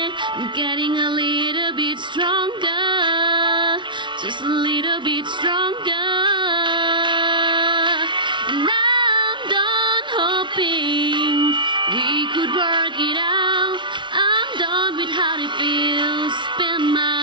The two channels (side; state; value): left; late; 0.23 ms